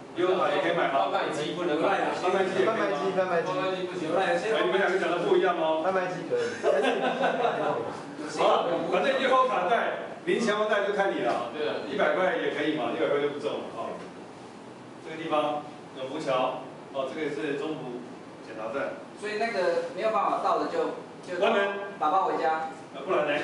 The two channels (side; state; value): both; identical; correlation 1.00